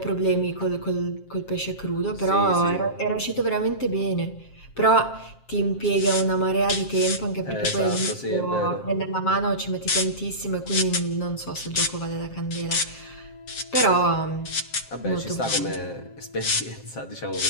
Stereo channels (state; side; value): late; right; 7.5 ms